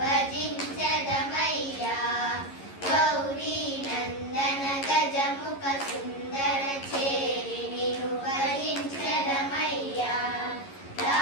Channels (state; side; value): late; right; 11 ms